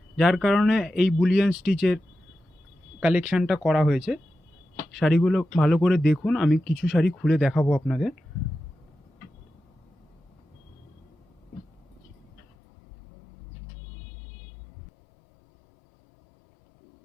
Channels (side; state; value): right; drops out; at 12.5 s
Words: যার কারণে এই বুলিয়ান স্টিচের কালেকশানটা করা হয়েছে। শাড়িগুলো ভালো করে দেখুন, আমি কিছু শাড়ি খুলে দেখাবো আপনাদের।